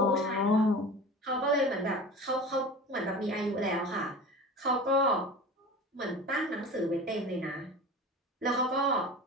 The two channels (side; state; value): both; normal; correlation 0.34